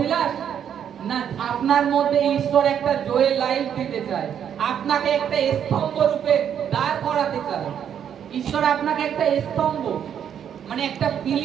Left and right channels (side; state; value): left; quieter; 8.8 dB